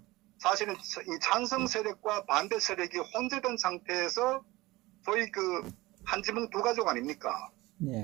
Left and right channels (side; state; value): left; quieter; 20.2 dB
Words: 사실은 이 찬성 세력과 반대 세력이 혼재된 상태에서 소위 그 한 지붕 두 가족 아닙니까?